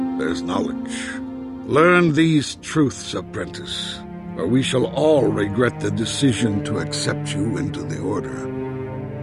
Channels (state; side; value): identical; both; correlation 1.00